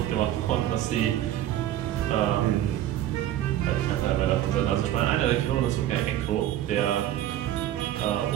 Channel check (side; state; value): left; quieter; 12.5 dB